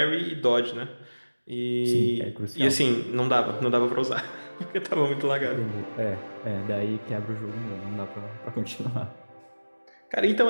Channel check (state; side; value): inverted; both; correlation -1.00